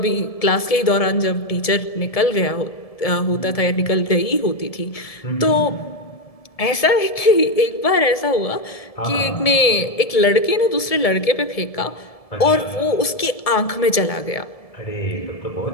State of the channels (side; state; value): right; late; 1.7 ms